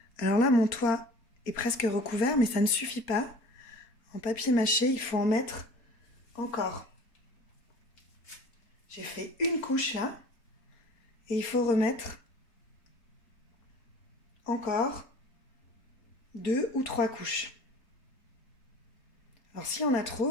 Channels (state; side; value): late; right; 4.3 ms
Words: Alors là, mon toit est presque recouvert, mais ça ne suffit pas. En papier mâché, il faut en mettre encore. J'ai fait une couche là. Et il faut remettre encore 2 ou 3 couches. Alors si on a